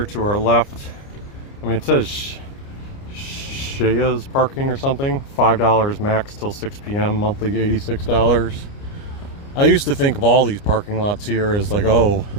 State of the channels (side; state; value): right; late; 29 ms